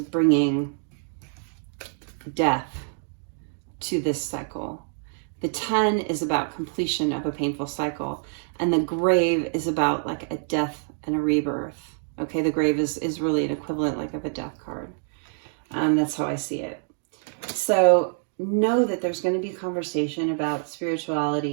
death to this cycle. The 10 is about completion of a painful cycle, and the Grave is about like a death and a rebirth. Okay, the Grave is really an equivalent like of a death card. That's how I see it. So know that there's going to be a conversation about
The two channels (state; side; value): silent; left; digital silence